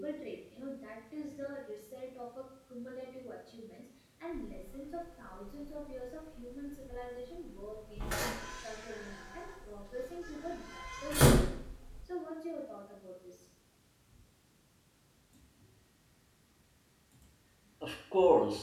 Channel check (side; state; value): both; identical; correlation 1.00